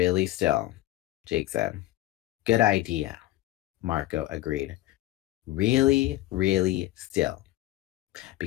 still, Jake said. Good idea, Marco agreed. Really, really still.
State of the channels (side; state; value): right; quieter; 16.1 dB